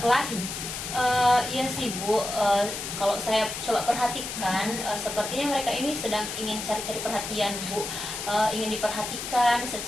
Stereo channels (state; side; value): noise; left; hiss, 6 dB below the sound